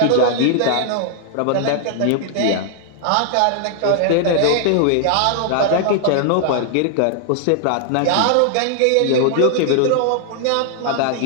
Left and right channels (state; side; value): different; both; correlation 0.00